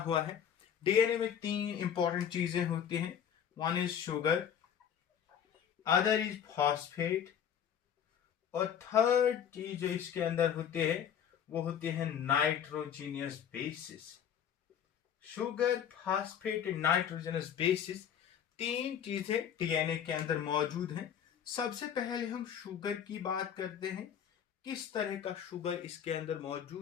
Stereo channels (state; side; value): quieter; right; 8.8 dB